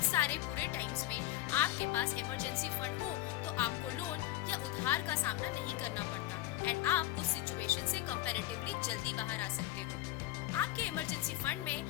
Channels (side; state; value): right; quieter; 15.8 dB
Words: सारे बुरे टाइम्स में आपके पास इमरजेंसी फंड हो तो आपको लोन या उधार का सामना नहीं करना पड़ता एंड आप उस सिचुएशन से कंपैरेटिवली जल्दी बाहर आ सकते हो। आपके इमरजेंसी फंड